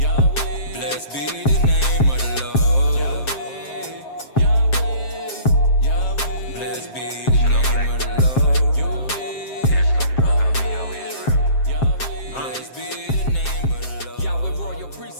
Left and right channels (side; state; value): right; late; 7.5 ms